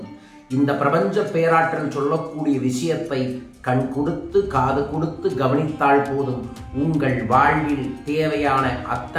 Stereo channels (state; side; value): identical; both; correlation 1.00